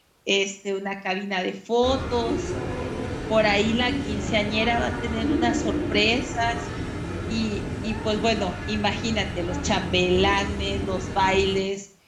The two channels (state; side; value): identical; both; correlation 1.00